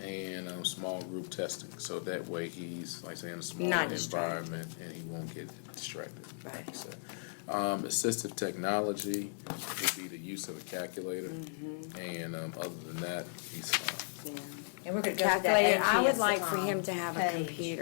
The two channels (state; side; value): silent; right; digital silence